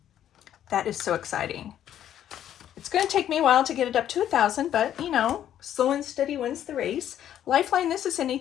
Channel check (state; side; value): quieter; right; 10.8 dB